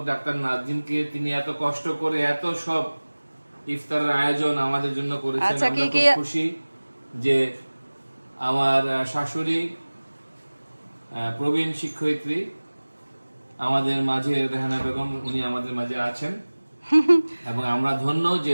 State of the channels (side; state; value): both; inverted; correlation -1.00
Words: ডাক্তার নাজিমকে। তিনি এত কষ্ট করে এত সব ইফতারের আয়োজন আমাদের জন্য করেছেন। আমরা খুব খুশি যে আমার শাশুড়ি প্রবীণ শিক্ষয়িত্রী আমাদের মাঝে রেহানা বেগম, উনি আমাদের মাঝে আছেন এবং আমরা ধন্য যে